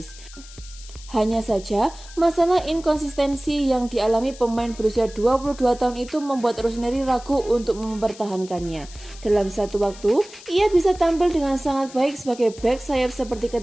Hanya saja, masalah inkonsistensi yang dialami pemain berusia 22 tahun itu membuat Rossoneri ragu untuk mempertahankannya. Dalam satu waktu, ia bisa tampil dengan sangat baik sebagai bek sayap seperti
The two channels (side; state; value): left; noise; hiss, 19 dB below the sound